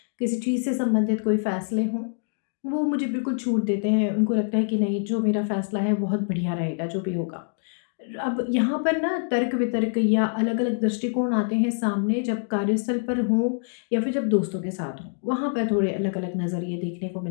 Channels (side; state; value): right; silent; digital silence